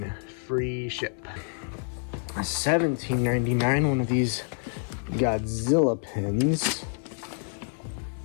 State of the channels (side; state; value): right; silent; 55 dB below the other